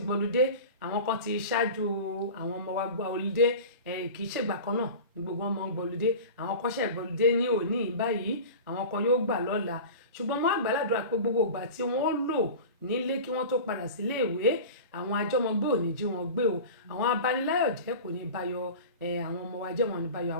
gbọ́lùdé àwọn kan ti ṣáájú àwọn ọmọ wa gba ọlùdé kì í ṣègbà kan náà ní gbogbo ọmọ ń gbọ́lùdé àwọn kan ṣe gbọ́lùdé ní òní báyìí àwọn kan yóò gbà lọ́la ṣùgbọ́n mo àgbàládùra pé gbogbo ìgbà tí wọ́n lò nílé kí wọ́n tó padà sílé ìwé àwọn àjọmọgbé ò ní jí wọn gbé o àwọn abaniláyọ̀ jẹ́ kò ní bayọ̀ àwọn ọmọ wa jẹ́ wọn ní bayọ̀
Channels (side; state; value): both; inverted; correlation -0.34